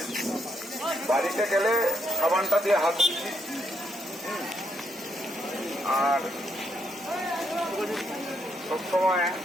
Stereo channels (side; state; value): both; normal; correlation 0.77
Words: বাড়িতে গেলে সাবানটা দিয়ে হাত ধুচ্ছি, আর সবসময়